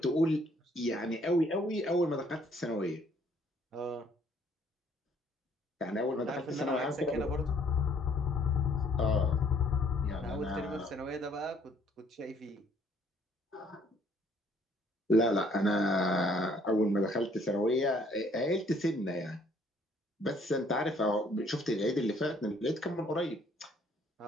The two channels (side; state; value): both; normal; correlation 0.63